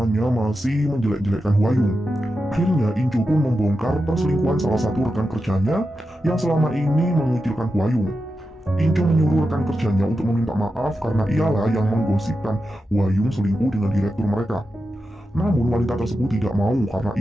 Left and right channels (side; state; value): both; normal; correlation 0.90